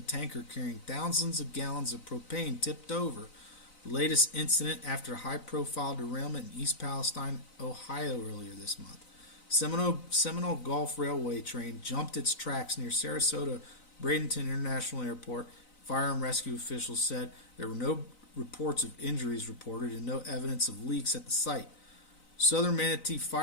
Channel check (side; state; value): right; late; 3.9 ms